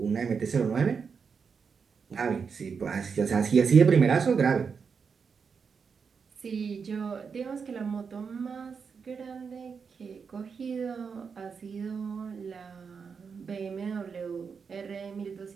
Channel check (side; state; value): left; quieter; 5.8 dB